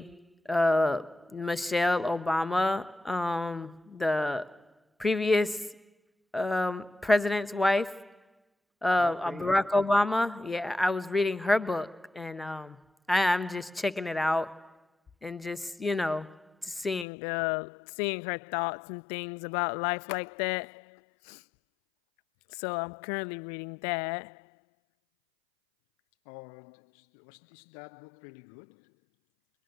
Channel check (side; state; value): right; drops out; at 17.1 s